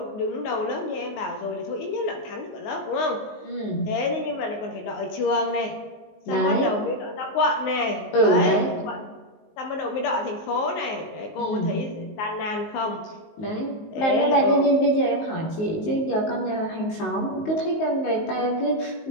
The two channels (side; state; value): right; late; 19 ms